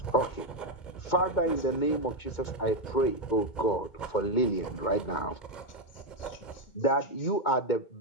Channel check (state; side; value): late; right; 2.2 ms